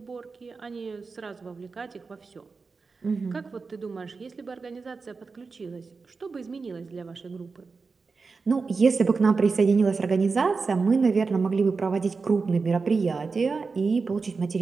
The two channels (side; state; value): left; quieter; 4.5 dB